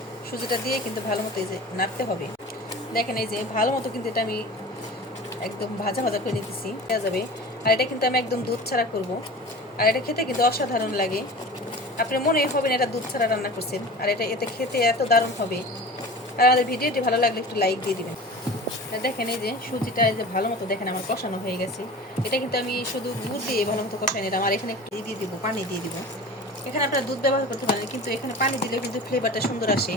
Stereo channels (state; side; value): normal; both; correlation 0.37